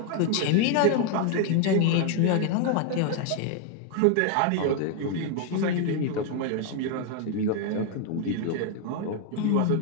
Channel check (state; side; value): different; both; correlation 0.01